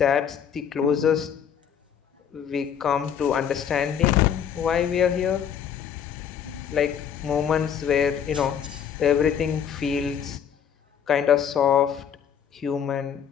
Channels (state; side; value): quieter; right; 8.3 dB